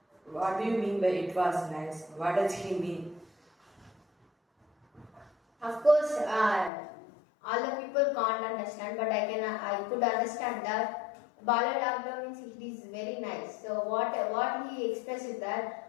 What do you mean by it was nice? What does he mean? Of course, all the people can't understand, but I could understand that Balu Laglo means it is very nice. So what he expressed is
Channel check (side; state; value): right; drops out; at 6.7 s